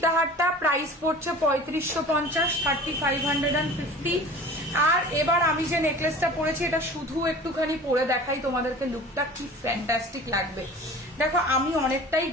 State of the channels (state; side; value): normal; both; correlation 0.41